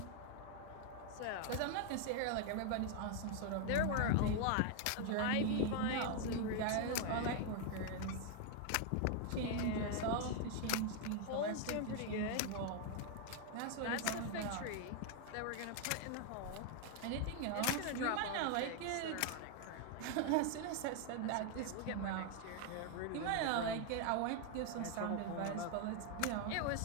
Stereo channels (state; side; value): different; both; correlation 0.00